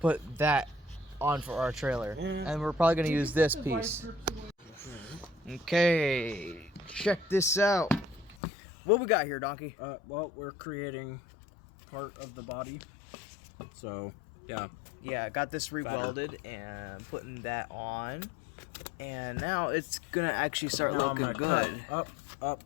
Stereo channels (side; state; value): right; drops out; at 8.3 s